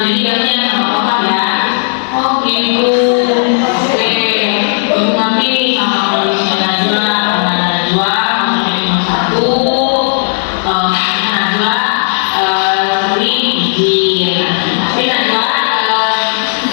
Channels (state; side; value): silent; right; digital silence